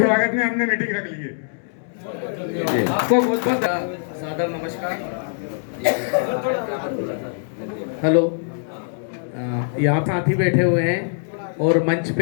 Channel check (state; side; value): silent; right; 64 dB below the other